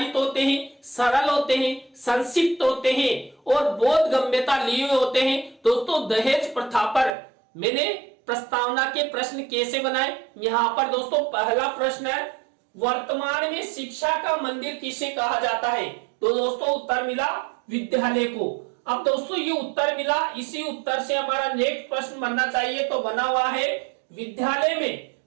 होते हैं, सरल होते हैं, संक्षिप्त होते हैं और बोधगम्यता लिए होते हैं। दोस्तों दहेज प्रथा पर मैंने प्रस्तावना के प्रश्न कैसे बनाए, यहाँ पर दोस्तों पहला प्रश्न है, वर्तमान में शिक्षा का मंदिर किसे कहा जाता है? तो दोस्तों उत्तर मिला विद्यालय को। अब दोस्तों ये उत्तर मिला, इसी उत्तर से हमारा नेक्स्ट प्रश्न बनना चाहिए, तो बना हुआ है विद्यालय में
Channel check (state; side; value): drops out; left; at 7.1 s